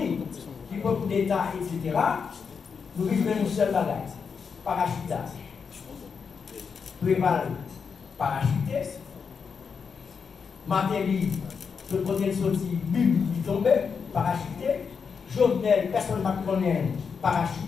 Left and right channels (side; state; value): right; quieter; 5.9 dB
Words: du peuple d'État, etc., nous vivons une seule bagage, parachutage. Préval, parachuté. Matéli, le côté sorti, bim, il tombait, parachuté. Jovenel, personne ne connaît,